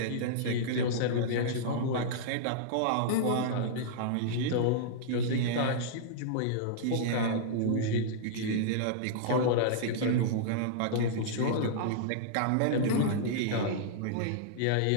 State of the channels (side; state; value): both; different; correlation -0.02